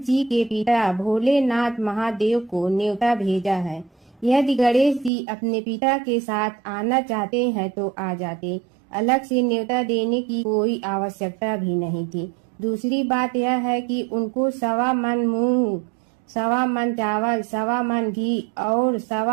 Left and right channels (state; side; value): drops out; left; at 5.1 s